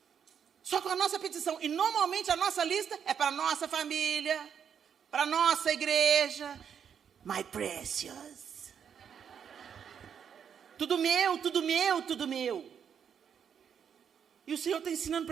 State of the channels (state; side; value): quieter; left; 7.8 dB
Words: Só com a nossa petição. E normalmente a nossa lista é para a nossa família, para a nossa igreja. My precious. Tudo meu, tudo meu, tudo meu. E o Senhor está ensinando